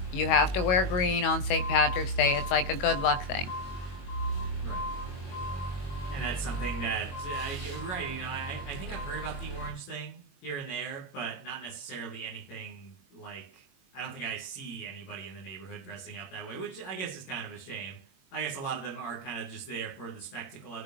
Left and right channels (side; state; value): right; late; 22 ms